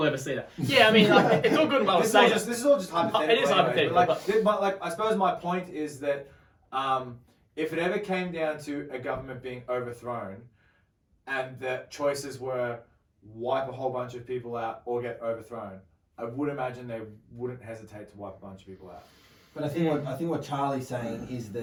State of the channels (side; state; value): both; identical; correlation 1.00